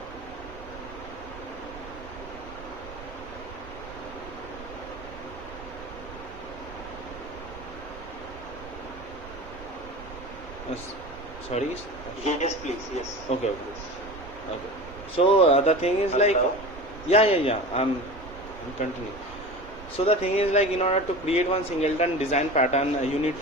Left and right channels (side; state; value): right; noise; rumble, 15 dB below the sound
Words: Sorry. Yes, please. Yes. Okay. Yes. Okay. So the thing is like, Hello? yeah. I'm continuing. So the thing is like in order to create one singleton design pattern, you need